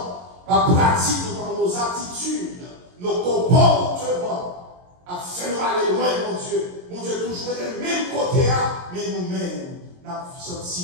par pratique dans nos attitudes, nos comportements, a fait nous aller loin, mon Dieu. Mon Dieu, toujours des mêmes côtés, mais nous-mêmes, nous avons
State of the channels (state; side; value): late; left; 22 ms